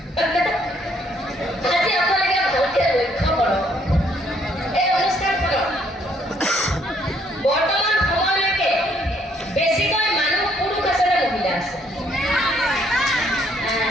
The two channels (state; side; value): normal; both; correlation 0.67